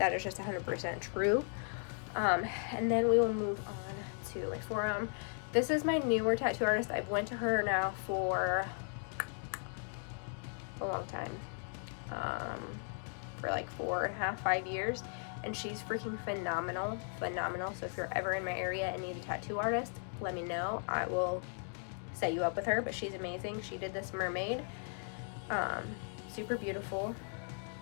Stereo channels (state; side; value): silent; right; 53 dB below the other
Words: is just 100% true. And then we will move on to my forearm. This is my newer tattoo artist. I've went to her now for a long time, for like 4.5, 5 years, and she's freaking phenomenal. So if you're ever in my area and need a tattoo artist, let me know. I will set you up with her, but she's amazing. She did this mermaid, Super beautiful.